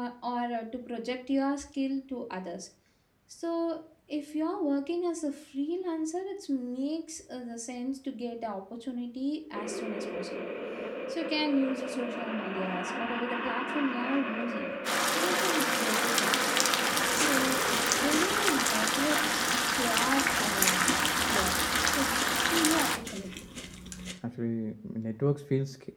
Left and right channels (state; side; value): identical; both; correlation 1.00